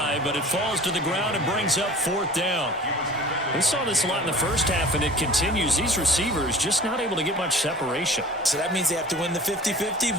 but it falls to the ground and brings up 4th down. We saw this a lot in the first half, and it continues. These receivers just not able to get much separation. So that means they have to win the 50-50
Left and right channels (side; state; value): both; normal; correlation 0.44